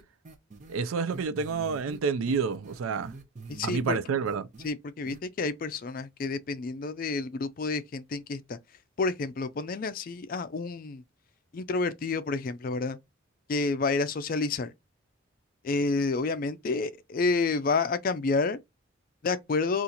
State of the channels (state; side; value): normal; both; correlation 0.18